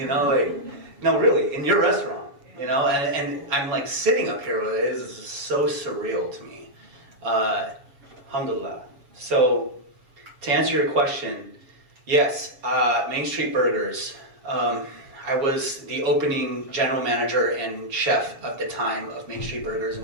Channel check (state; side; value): late; left; 7.3 ms